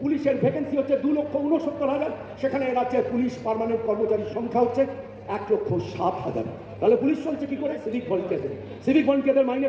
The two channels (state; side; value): identical; both; correlation 1.00